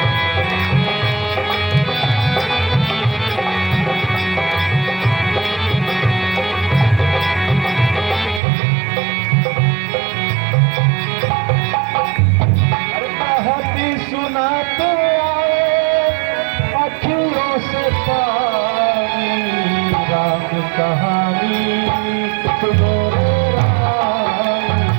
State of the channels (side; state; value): left; drops out; at 8.4 s